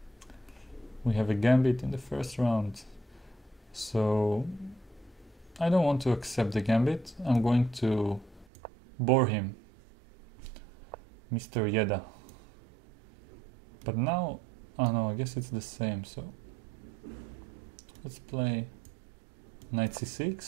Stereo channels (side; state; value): left; drops out; at 8.5 s